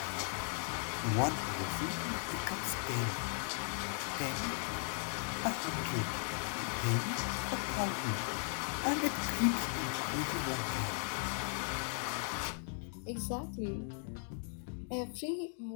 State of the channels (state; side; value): silent; right; 53 dB below the other